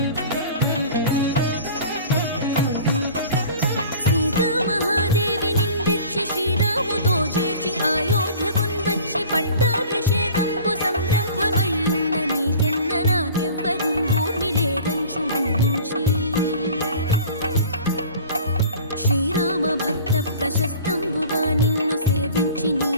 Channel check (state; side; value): inverted; both; correlation -0.43